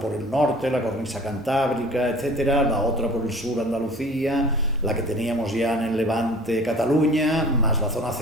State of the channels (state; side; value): normal; both; correlation 0.45